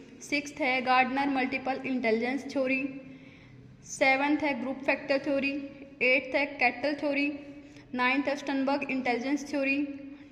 सिक्स्थ है Gardner multiple intelligence theory. Seventh है ग्रुप फैक्टर थ्योरी। एट्थ है कैटल थ्योरी। नाइन्थ है स्टनबर्ग इंटेलिजेंस थ्योरी।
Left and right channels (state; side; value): identical; both; correlation 1.00